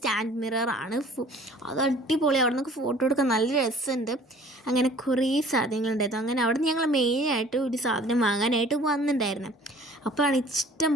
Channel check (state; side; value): normal; both; correlation 0.51